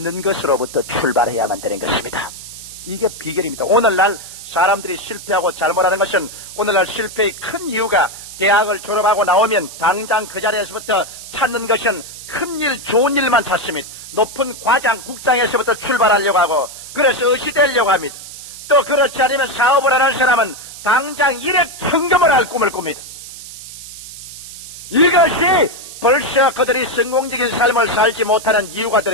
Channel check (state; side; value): noise; right; hiss, 13 dB below the sound